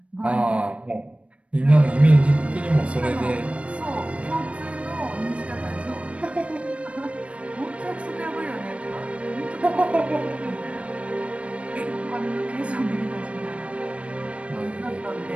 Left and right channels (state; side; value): late; left; 0.062 ms